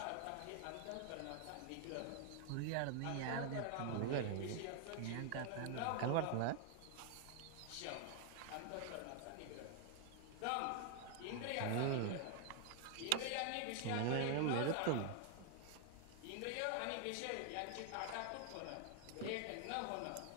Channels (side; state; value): both; different; correlation 0.00